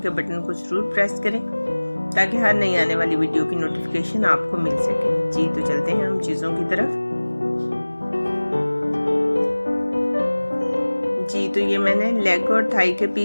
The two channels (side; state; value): both; inverted; correlation -1.00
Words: के बटन को ज़रूर प्रेस करें ताकि हर नई आने वाली वीडियो की नोटिफिकेशन आपको मिल सके। जी तो चलते हैं हम चीज़ों की तरफ। जी तो ये मैंने लेग और थाई के